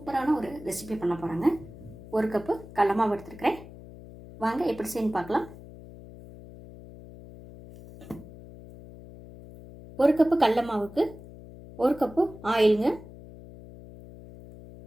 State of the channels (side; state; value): left; noise; hum, 17 dB below the sound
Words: ஒரு ரெசிபி பண்ண போகிறாங்க. ஒரு கப்பு கடல மாவு எடுத்துருக்கிறேன். வாங்க எப்படி செய்யணும் பார்க்கலாம். ஒரு கப்பு கடல மாவுக்கு ஒரு கப்பு ஆயிலுங்க.